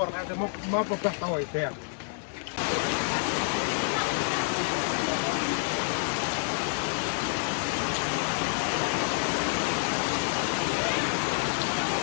mà có cái tỏi đẹp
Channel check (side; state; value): right; silent; 59 dB below the other